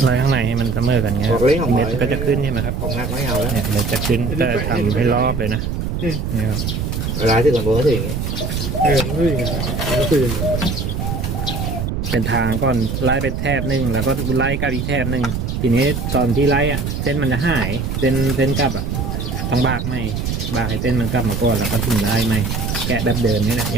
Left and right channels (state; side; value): noise; right; rumble, 2 dB below the sound